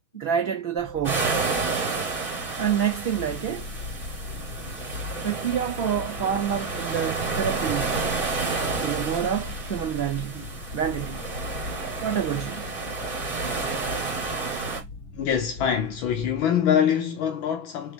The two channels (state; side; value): late; right; 6.1 ms